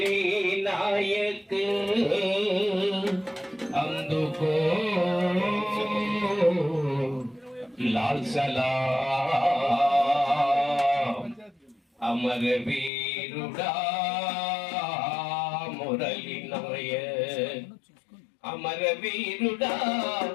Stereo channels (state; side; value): drops out; right; at 12.9 s